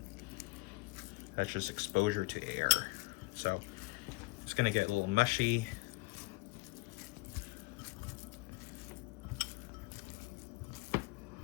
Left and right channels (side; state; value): right; quieter; 24.5 dB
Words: That's just exposure to air. So it's going to get a little mushy.